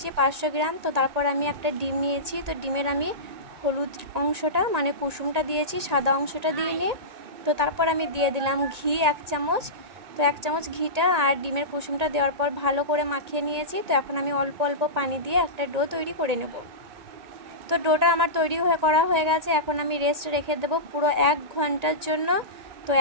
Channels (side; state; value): left; late; 1.8 ms